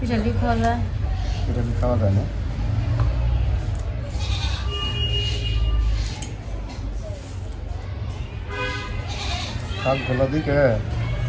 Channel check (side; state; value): both; identical; correlation 1.00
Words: খাওয়া যায়। পিটালি খাওয়া যায় না। শাকগুলো দিকে